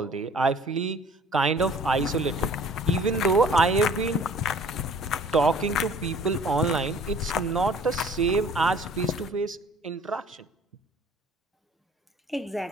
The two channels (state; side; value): normal; both; correlation 0.51